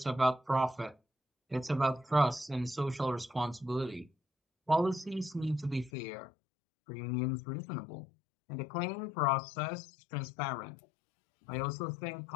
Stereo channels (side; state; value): right; drops out; at 5.9 s